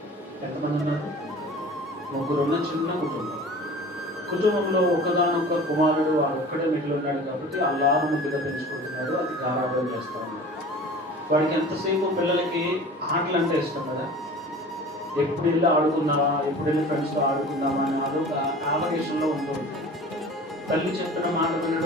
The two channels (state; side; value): normal; both; correlation 0.41